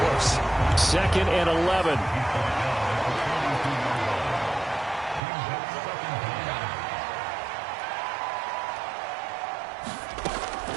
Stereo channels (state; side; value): drops out; left; at 5.2 s